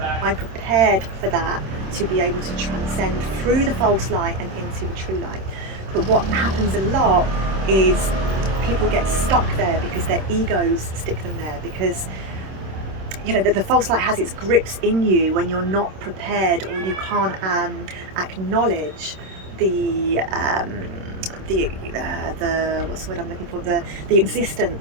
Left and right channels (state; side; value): late; left; 26 ms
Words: I'm prepared for that, to be able to transcend through the false light and into the true light. But what happens a lot is people get stuck there because their egos stick them there, because you know the false light has its grips in you when you're not prepared, or you can't acknowledge the what's the word I'm looking for, the